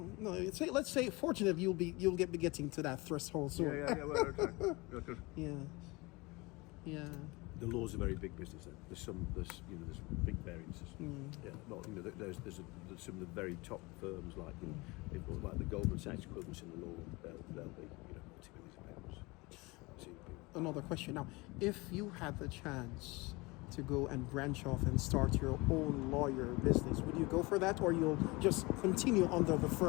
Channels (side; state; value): right; quieter; 24.2 dB